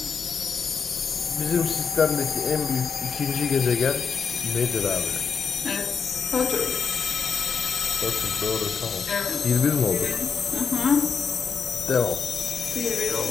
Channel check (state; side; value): quieter; right; 5.9 dB